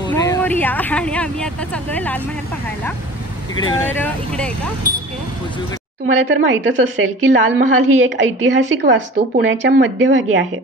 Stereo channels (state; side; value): normal; both; correlation 0.41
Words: आणि आम्ही आता चाललोय लाल महल पाहायला। तर इकडे आहे का? ओके। तुम्हाला तर माहीतच असेल की लाल महाल ही एक ऐतिहासिक वास्तू पुण्याच्या मध्यभागी आहे